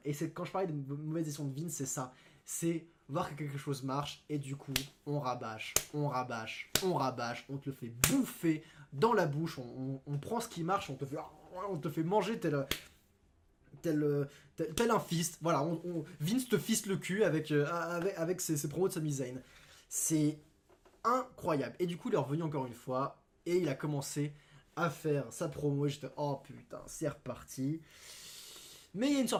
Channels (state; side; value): identical; both; correlation 1.00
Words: et c'est quand je parlais de mauvaise gestion de Vince, c'est ça, c'est voir que quelque chose marche, et du coup, on rabâche, on te le fait bouffer dans la bouche, on prend ce qui marche, on te fait manger tel un fist, voilà, Vince te fiste le cul avec ses promos de Sami Zayn. C'est incroyable. Et du coup, il est revenu encore une fois, et il a commencé à faire sa promo, et j'étais, oh putain, c'est reparti. Mais il y a une